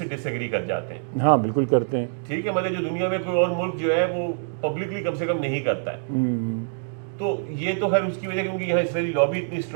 ڈس ایگری کر جاتے ہیں. ہاں بالکل کرتے ہیں. ٹھیک ہے، مطلب جو دنیا میں کوئی اور ملک جو ہے وہ پبلکلی کم سے کم نہیں کرتا ہے. تو یہ تو خیر اس کی وجہ کہ ان کی یہاں اسرائیلی لابی اتنی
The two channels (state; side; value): silent; left; digital silence